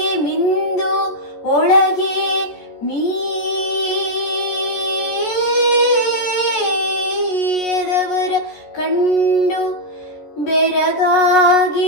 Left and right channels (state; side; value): late; right; 14 ms